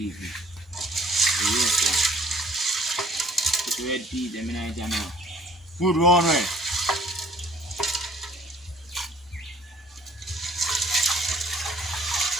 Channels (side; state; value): both; normal; correlation 0.56